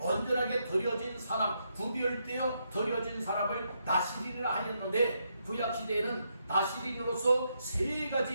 드려진 사람, 구별되어 드려진 사람을 나시린이라 하였는데 구약시대에는 나시린으로서 세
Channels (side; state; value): both; inverted; correlation -0.79